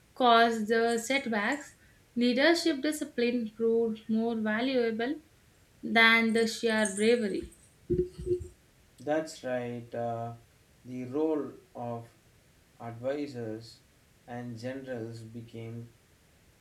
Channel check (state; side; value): identical; both; correlation 1.00